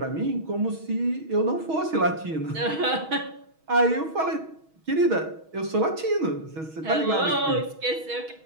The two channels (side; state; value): left; late; 6.3 ms